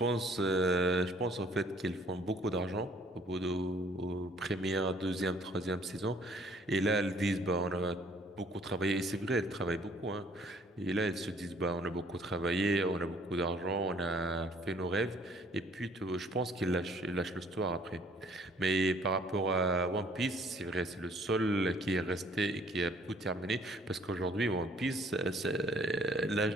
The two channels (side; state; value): both; normal; correlation 0.59